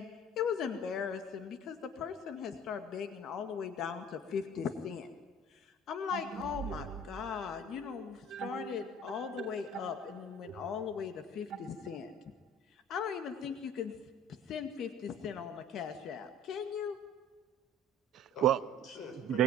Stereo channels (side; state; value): both; normal; correlation 0.47